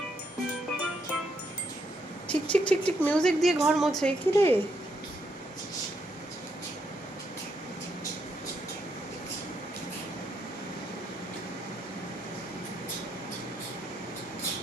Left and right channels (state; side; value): normal; both; correlation 0.77